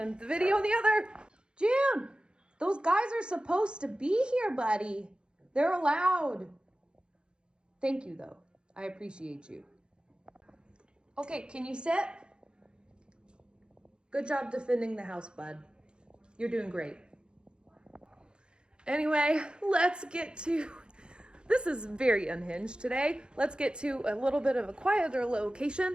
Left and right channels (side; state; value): left; late; 0.051 ms